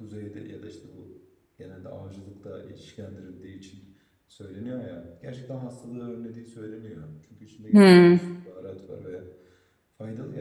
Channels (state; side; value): identical; both; correlation 1.00